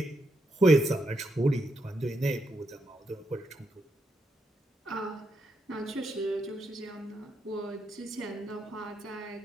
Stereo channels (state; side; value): normal; both; correlation 0.81